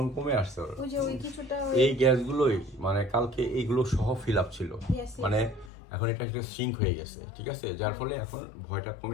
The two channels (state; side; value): drops out; right; at 5.7 s